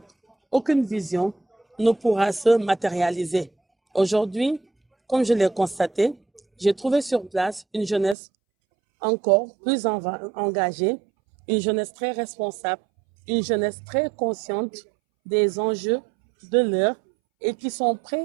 aucune vision ne pourra se matérialiser. Aujourd'hui, comme je l'ai constaté, j'ai trouvé sur place une jeunesse encore plus engagée, une jeunesse très responsable, une jeunesse très consciente des enjeux de l'heure et qui sont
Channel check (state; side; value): drops out; left; at 8.2 s